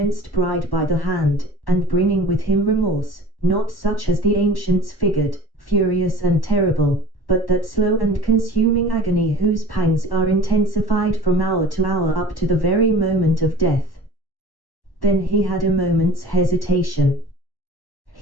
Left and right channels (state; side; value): late; right; 1.1 ms